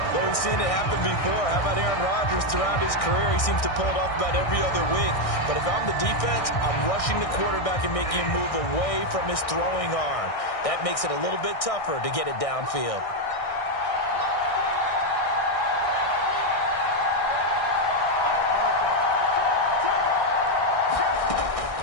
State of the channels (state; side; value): late; right; 1.6 ms